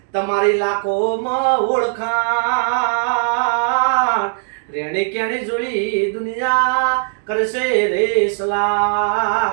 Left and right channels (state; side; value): silent; left; digital silence